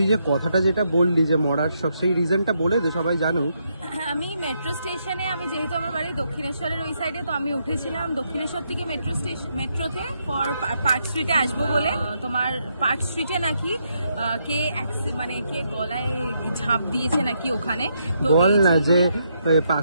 যে কথাটা যেটা বললি যে মরার শখ, সেই রিজনটা বলে দে, সবাই জানুক। আমি মেট্রো স্টেশনে, আমি যেহেতু আমার বাড়ি দক্ষিণেশ্বরের ওই সাইডে, তো আমি উঠেছিলাম দক্ষিণেশ্বর থেকে মেট্রোতে ফর পার্ক স্ট্রিটে আসবো বলে। তোমার পার্ক স্ট্রিটে নাকি কে গলায় ঝাঁপ দিয়েছে নাকি ওখানে। বল না যে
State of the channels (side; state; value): both; inverted; correlation -0.78